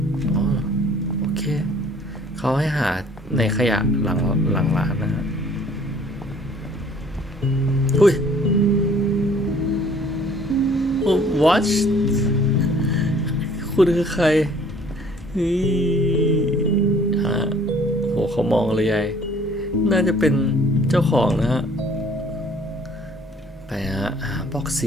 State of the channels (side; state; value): both; normal; correlation 0.55